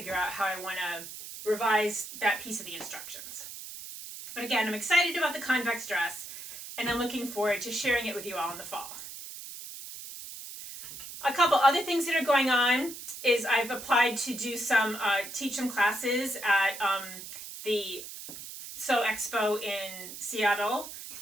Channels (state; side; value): noise; right; hiss, 11 dB below the sound